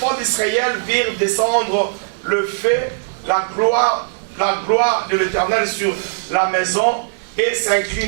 d'Israël virent descendre le feu, la gloire de l'Éternel sur la maison, et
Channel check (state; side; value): silent; left; digital silence